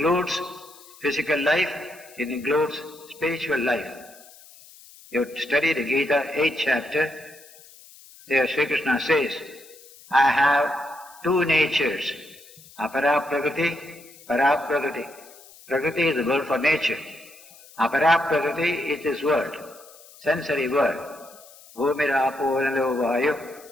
physical life, it includes spiritual life. You study the Gita, 8th chapter, there Sri Krishna says, I have two natures, apara prakriti, para prakriti. Prakriti is the word for nature. Apara prakriti is this world, sensory world. Bhumirapo nalo vayu,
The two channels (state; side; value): noise; left; hiss, 22 dB below the sound